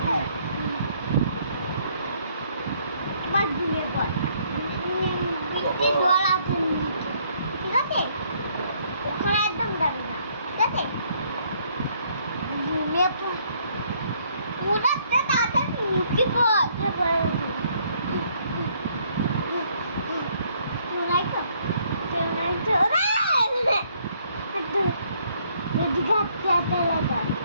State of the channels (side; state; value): both; inverted; correlation -0.67